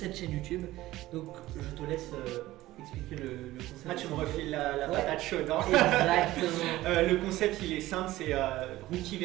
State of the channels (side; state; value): left; quieter; 16.6 dB